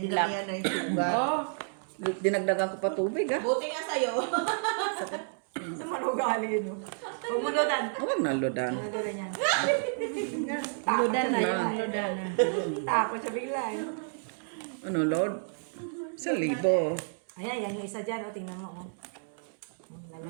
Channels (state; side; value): silent; left; digital silence